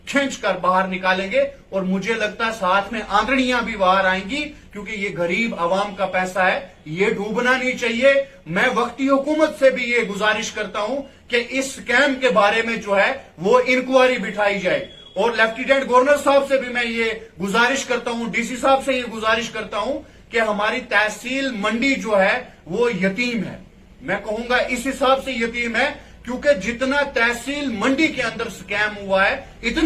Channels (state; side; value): identical; both; correlation 1.00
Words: खींच कर बाहर निकालेंगे और मुझे लगता है साथ में आंतड़ियां भी बाहर आएंगी, क्योंकि ये गरीब आवाम का पैसा है, ये डूबना नहीं चाहिए। मैं वक्ती हुकूमत से भी ये गुजारिश करता हूं कि इस स्कैम के बारे में जो है वो इंक्वायरी बिठाई जाए और लेफ्टिनेंट गवर्नर साहब से भी मैं ये गुजारिश करता हूं, डीसी साहब से ये गुजारिश करता हूं कि हमारी तहसील मंडी जो है वो यतीम है। मैं कहूंगा इस हिसाब से यतीम है क्योंकि जितना तहसील मंडी के अंदर स्कैम हुआ है,